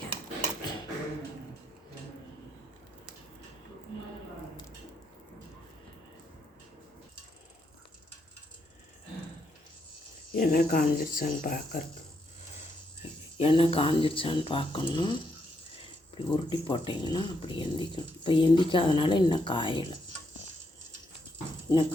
எண்ணெய் காஞ்சிருச்சான்னு பார்க்கணும். இப்படி உருட்டி போட்டிங்கன்னா அப்படி எந்திக்கணும். இப்போ எந்திக்காதனால இன்னும் காயலை, இன்னும்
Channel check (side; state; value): both; normal; correlation 0.78